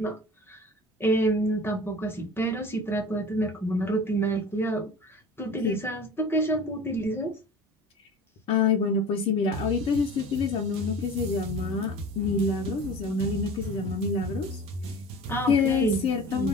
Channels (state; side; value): normal; both; correlation 0.38